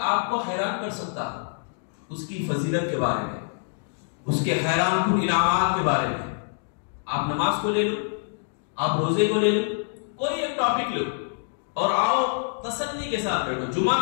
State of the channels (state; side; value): silent; right; digital silence